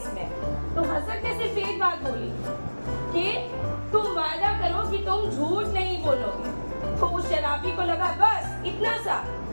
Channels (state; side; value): inverted; both; correlation -1.00